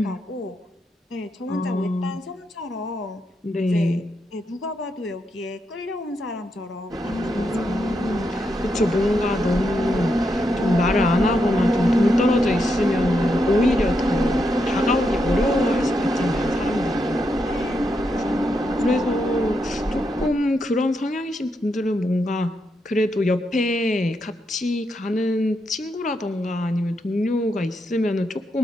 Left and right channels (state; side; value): normal; both; correlation 0.82